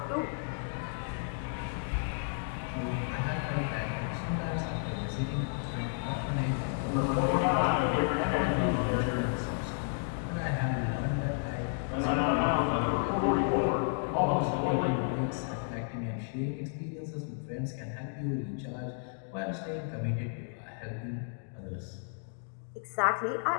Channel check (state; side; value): silent; right; digital silence